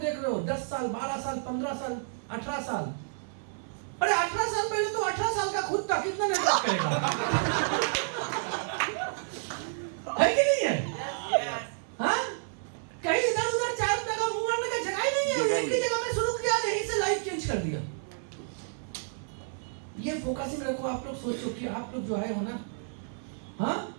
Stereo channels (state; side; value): silent; left; 58 dB below the other